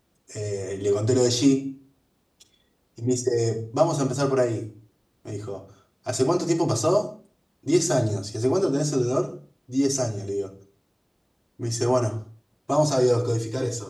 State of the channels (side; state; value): both; identical; correlation 1.00